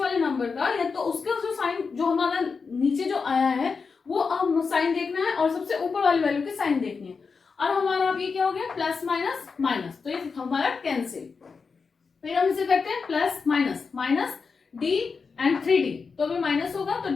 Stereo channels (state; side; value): quieter; right; 5.1 dB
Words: नंबर का, या तो उसका जो साइन जो हमारा नीचे जो आया है वो हम साइन देखना है, और सबसे ऊपर वाली वैल्यू की साइन देखनी है। और हमारा अब ये क्या हो गया, प्लस माइनस माइनस, तो ये हमारा कैंसिल। फिर हम इसे करते हैं plus minus, minus D and 3d, तो अभी माइनस होगा तो